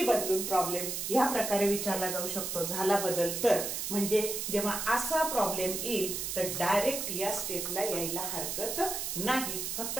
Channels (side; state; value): right; noise; hiss, 3 dB below the sound